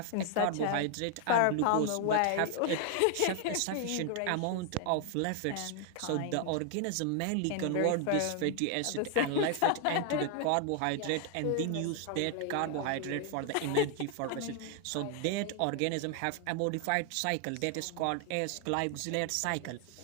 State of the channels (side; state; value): both; different; correlation 0.00